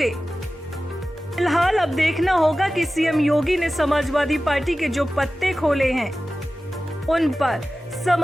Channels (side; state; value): both; normal; correlation 0.95